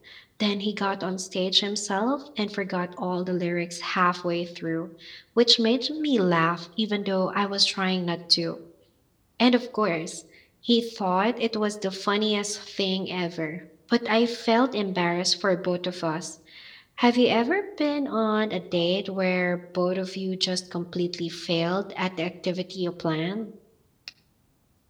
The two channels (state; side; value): identical; both; correlation 1.00